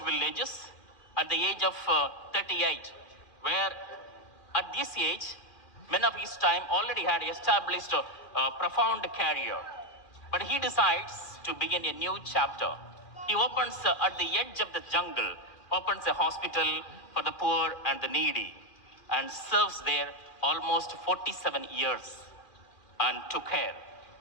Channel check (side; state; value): right; late; 2.2 ms